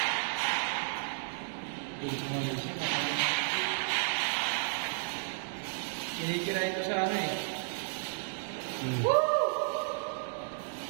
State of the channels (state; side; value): silent; left; digital silence